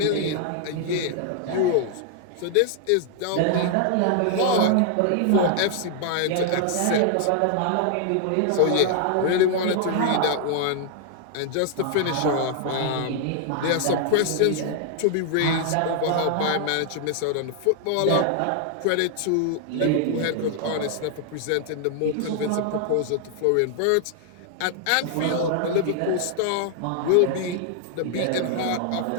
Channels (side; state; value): both; different; correlation 0.00